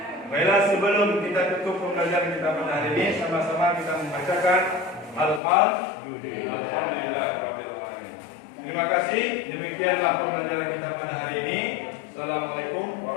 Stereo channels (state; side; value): drops out; right; at 5.4 s